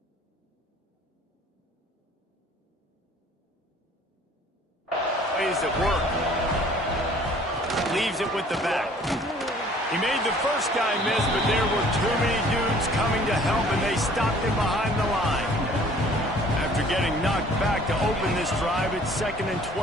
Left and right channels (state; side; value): normal; both; correlation 0.54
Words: Plays at work. Leaves it with the back. He made the first guy miss, but there were too many dudes coming to help, and they stopped him behind the line. After getting knocked back to open this drive, it's 2nd and